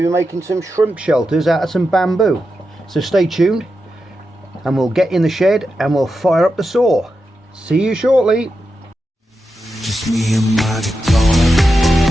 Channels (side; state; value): both; normal; correlation 0.89